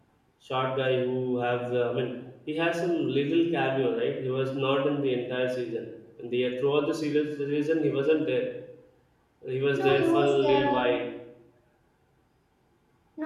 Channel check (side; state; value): both; identical; correlation 1.00